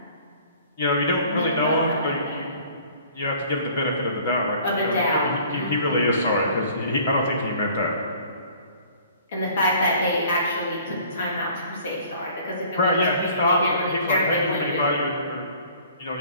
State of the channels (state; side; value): inverted; both; correlation -0.52